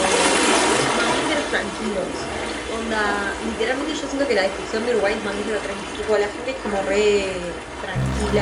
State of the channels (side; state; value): both; identical; correlation 1.00